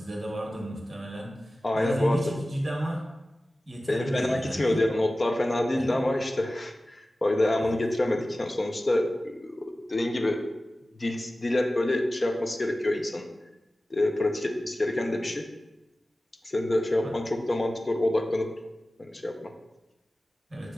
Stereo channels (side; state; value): both; normal; correlation 0.96